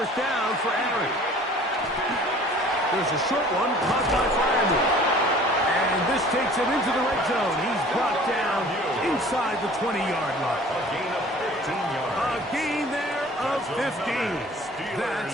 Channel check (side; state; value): both; normal; correlation 0.49